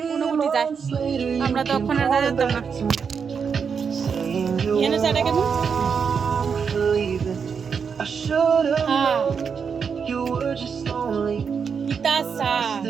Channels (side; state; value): left; quieter; 6.3 dB